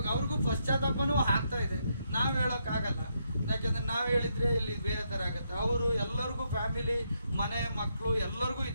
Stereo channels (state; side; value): inverted; both; correlation -0.78